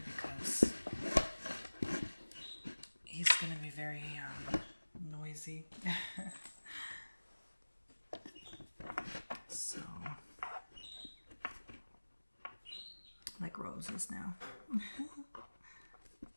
because he's gonna be very noisy. So, like Rose is now.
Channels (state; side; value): inverted; both; correlation -1.00